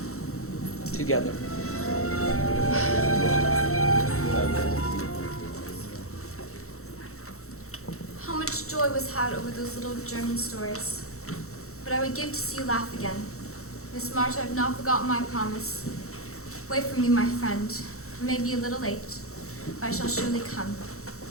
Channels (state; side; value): late; right; 0.63 ms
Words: Together. How much joy was had over those little German stories. But I would give to see you laugh again. Miss March, I have not forgotten my promise. Wait for me, my friend. I may be a little late, but I shall surely come.